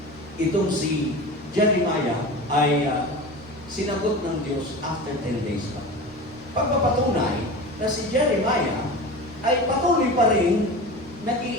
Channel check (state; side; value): normal; both; correlation 0.31